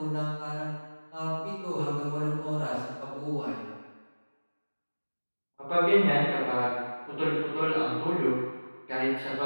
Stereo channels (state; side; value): inverted; both; correlation -1.00